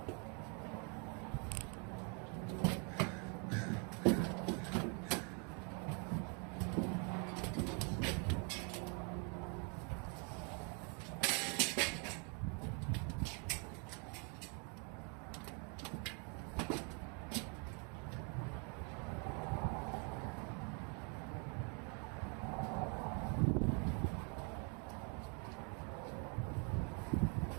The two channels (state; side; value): quieter; left; 36.9 dB